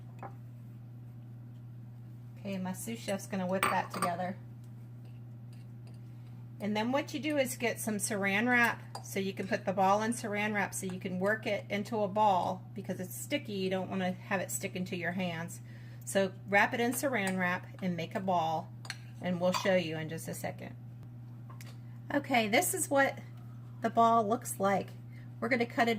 Okay, my sous chef's going to whip that together. And then what you do is get some saran wrap, so you can put the ball in saran wrap so you can work it into a ball. Because it's sticky, you don't want to have it stick into your hands. So wrap it in saran wrap and make a ball, and we'll show you in just a second. Okay, this is what the ball looks like. We're going to cut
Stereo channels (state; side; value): identical; both; correlation 1.00